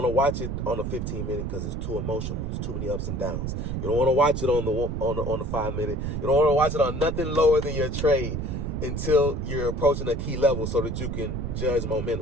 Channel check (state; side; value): noise; right; rumble, 3 dB below the sound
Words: to watch it on the 15 minute because it's too emotional. It's too many ups and downs. You don't want to watch it on the 5 minute. You don't want to watch it on nothing lower than your trade until you're approaching a key level so that you can judge